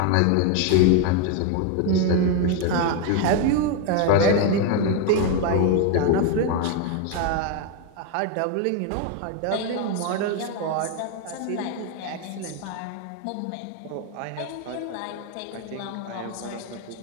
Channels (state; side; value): different; both; correlation 0.01